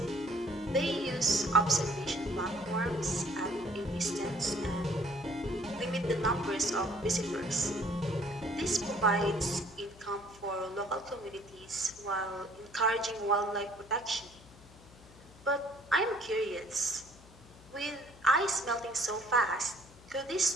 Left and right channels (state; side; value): noise; left; hum, 22 dB below the sound